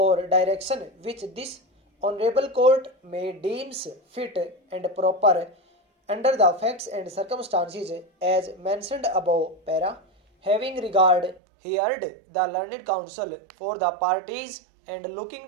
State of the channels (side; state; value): left; drops out; at 11.4 s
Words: direction which this honorable court may deems fit and proper under the facts and circumstances as mentioned above para, having regard heard the learned counsel for the parties and